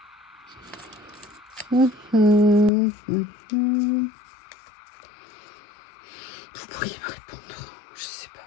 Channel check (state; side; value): drops out; right; at 2.7 s